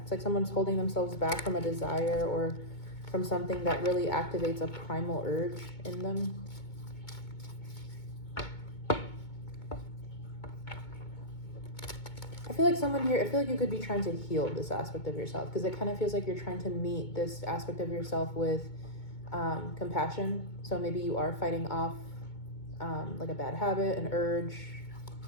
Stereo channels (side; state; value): right; late; 2.2 ms